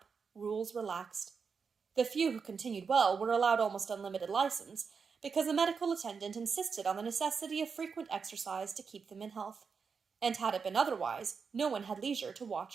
rules relaxed. The few who continued well were allowed almost unlimited license, because the medical attendant insisted on the necessity of frequent exercise to keep them in health, and had it been otherwise, no one had leisure to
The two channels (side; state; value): left; quieter; 5.6 dB